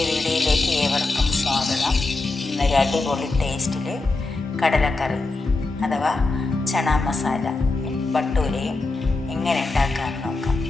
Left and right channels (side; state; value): right; quieter; 3.3 dB